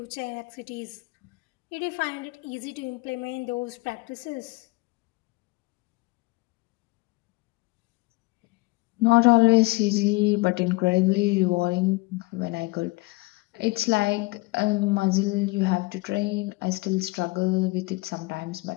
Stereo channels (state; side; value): quieter; right; 23.8 dB